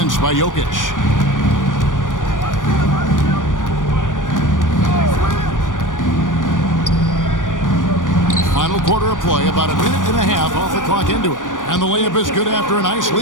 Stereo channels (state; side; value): late; right; 0.88 ms